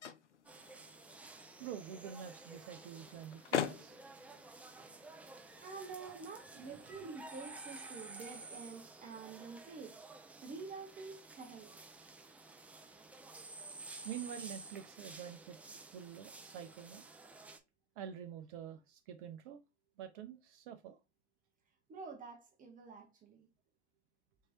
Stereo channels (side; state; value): both; normal; correlation 0.09